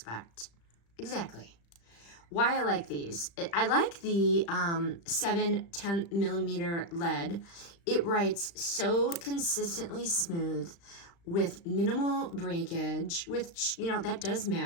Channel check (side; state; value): right; late; 35 ms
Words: Exactly. Why I like these. I like the 7/10 millimeter lead. It writes so consistently smooth with minimal breakage, which, you know, that does